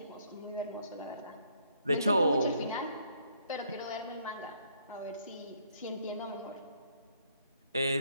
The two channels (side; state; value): both; inverted; correlation -0.67